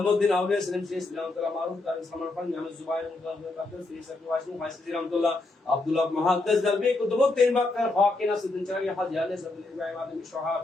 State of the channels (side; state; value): right; quieter; 3.1 dB